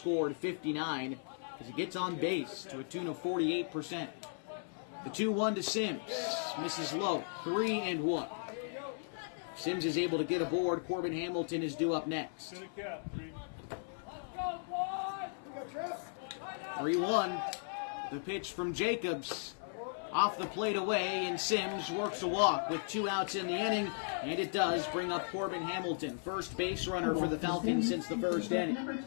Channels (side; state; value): right; silent; 53 dB below the other